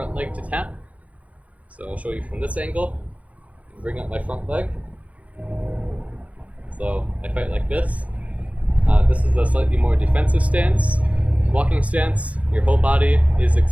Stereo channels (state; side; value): late; left; 0.067 ms